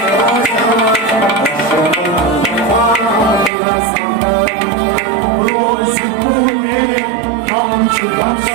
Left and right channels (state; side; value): drops out; left; at 3.5 s